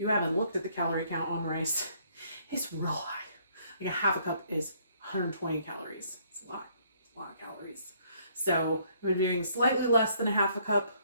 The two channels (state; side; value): inverted; both; correlation -0.65